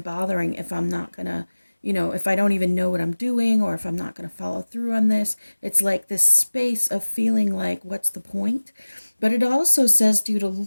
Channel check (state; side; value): inverted; both; correlation -1.00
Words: if I'm not going to, if I don't even know what I'm doing or if I'm not going to follow through on this? It's like this space of feeling like, what's the point? But it also says to you to